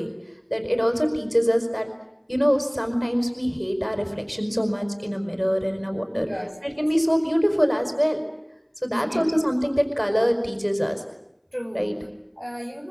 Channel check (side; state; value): both; identical; correlation 1.00